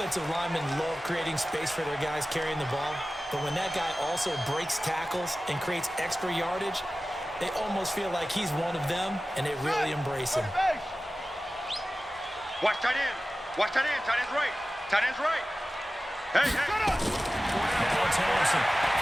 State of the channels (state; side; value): normal; both; correlation 0.95